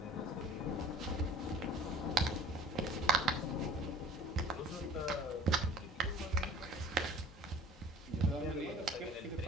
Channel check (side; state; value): both; normal; correlation 0.47